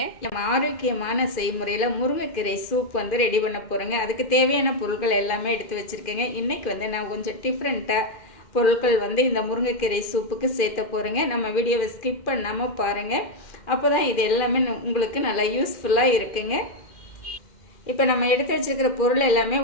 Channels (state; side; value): late; right; 2.1 ms